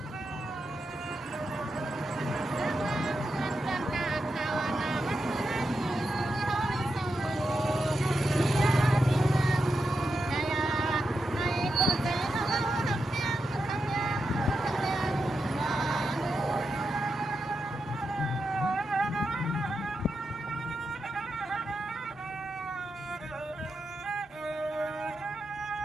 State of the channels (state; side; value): normal; both; correlation 0.87